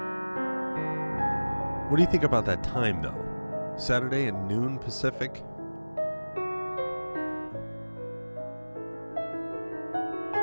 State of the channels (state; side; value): inverted; both; correlation -1.00